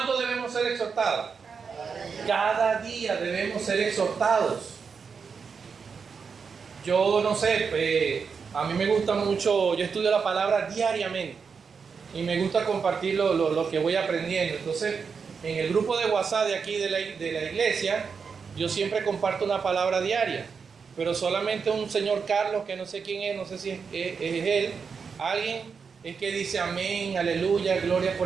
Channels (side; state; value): left; quieter; 5.7 dB